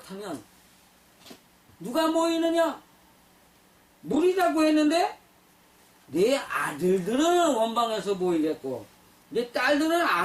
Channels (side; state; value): both; identical; correlation 1.00